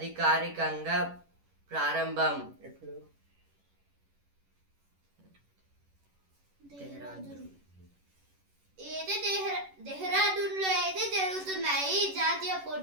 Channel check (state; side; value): late; left; 11 ms